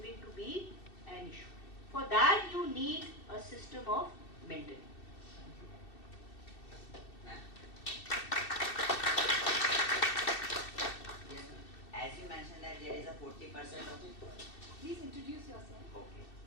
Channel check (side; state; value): right; late; 2.7 ms